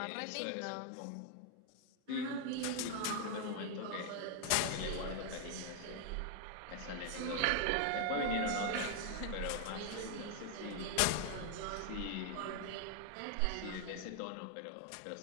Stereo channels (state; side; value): different; both; correlation 0.00